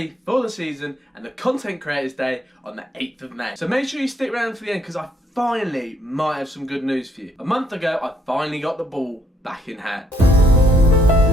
for the season and the Content Creators Day on the 8th of May. So make sure you stick around for the end because I finally might have some good news for you. A month ago, I finally got the ball back in hand.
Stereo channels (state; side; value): normal; both; correlation 0.70